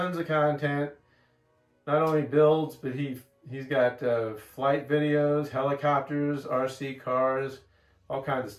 of content, not only builds, but he's got flight videos, helicopters, RC cars, all kinds of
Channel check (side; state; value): both; identical; correlation 1.00